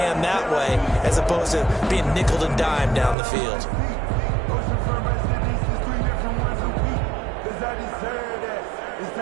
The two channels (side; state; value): left; drops out; at 3.2 s